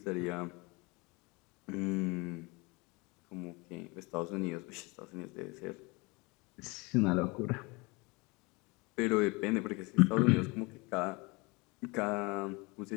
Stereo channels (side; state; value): right; quieter; 26.5 dB